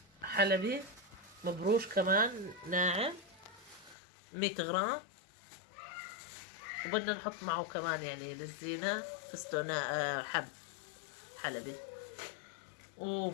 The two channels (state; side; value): drops out; right; at 4.0 s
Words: حلبي مبروش كمان ناعم 100 غرام. وبدنا نحط معه كمان يعني للزينة فستق حب حلبي.